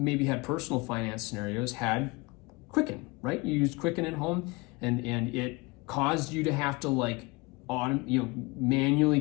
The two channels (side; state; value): right; quieter; 25.3 dB